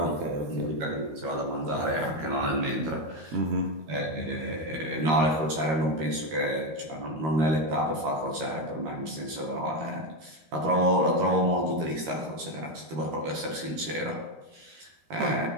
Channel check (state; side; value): late; left; 13 ms